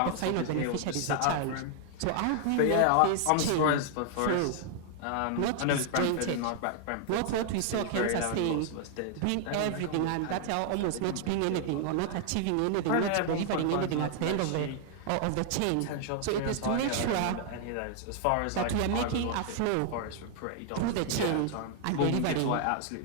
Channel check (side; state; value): both; different; correlation 0.00